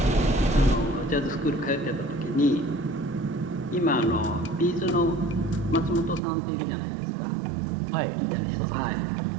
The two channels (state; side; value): drops out; left; at 6.2 s